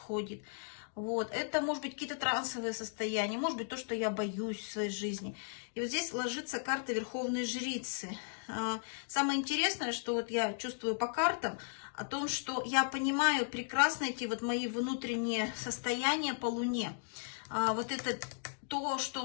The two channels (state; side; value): silent; right; digital silence